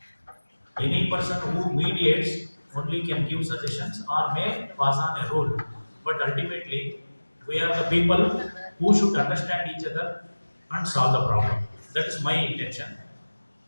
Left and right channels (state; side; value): inverted; both; correlation -1.00